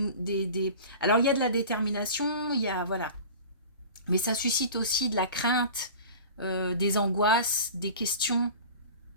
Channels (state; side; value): inverted; both; correlation -0.37